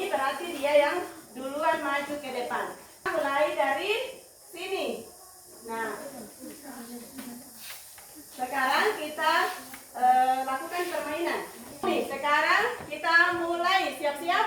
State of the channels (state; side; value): identical; both; correlation 1.00